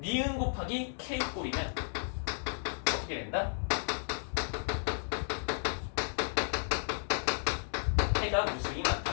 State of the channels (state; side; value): silent; right; digital silence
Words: 니은 곱하기 k 꼴이면 어떻게 된다? 해가 무수히